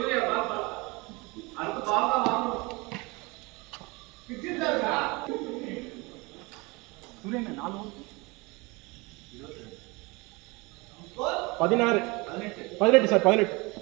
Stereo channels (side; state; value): left; quieter; 25.6 dB